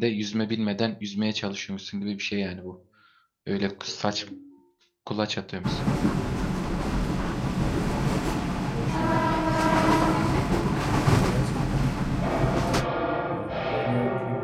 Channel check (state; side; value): identical; both; correlation 1.00